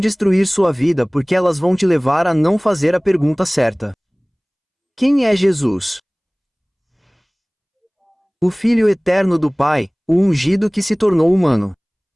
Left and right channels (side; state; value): both; identical; correlation 1.00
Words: sua vida porque elas vão te levar a não fazer a pergunta certa. Quem é Jesus? O Filho eterno do Pai, o ungido que se tornou humano.